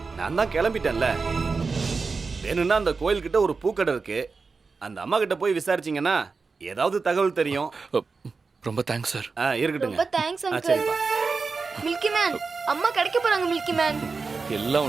நான் தான் கிளம்பிட்டேன்ல. வேணும்னா அந்த கோயில் கிட்ட ஒரு பூக்கடை இருக்கு, அந்த அம்மா கிட்ட போய் விசாரிச்சீங்கன்னா ஏதாவது தகவல் தெரியும். ரொம்ப தேங்க்ஸ் சார். இருக்கட்டுங்க. ரொம்ப தேங்க்ஸ் அங்கிள். சரிப்பா. மில்கி மேன், அம்மா கிடைக்க போறாங்க மில்கி மேன். எல்லாம்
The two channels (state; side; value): quieter; left; 4.5 dB